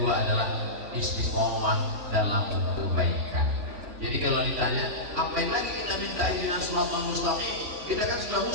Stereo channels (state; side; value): late; left; 3.5 ms